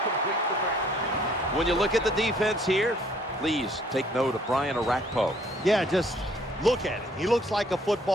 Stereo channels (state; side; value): normal; both; correlation 0.61